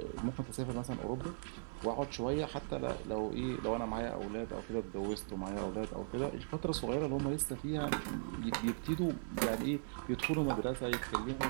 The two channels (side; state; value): left; silent; digital silence